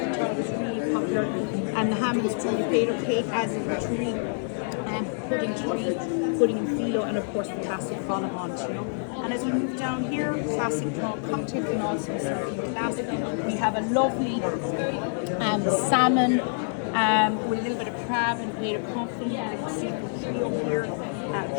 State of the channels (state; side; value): silent; right; digital silence